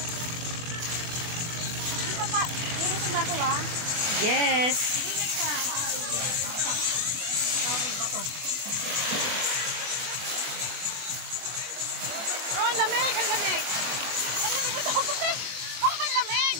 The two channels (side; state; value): left; late; 23 ms